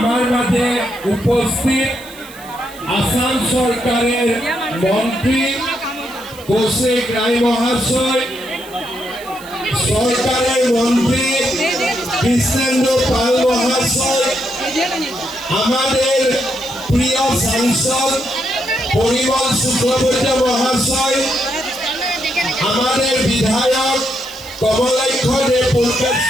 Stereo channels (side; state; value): right; noise; hiss, 20 dB below the sound